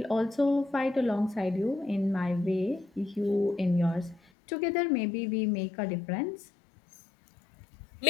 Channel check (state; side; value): drops out; right; at 4.2 s